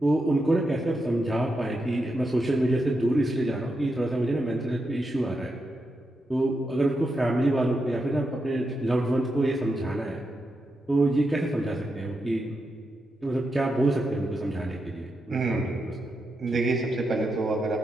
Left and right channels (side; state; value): both; normal; correlation 0.85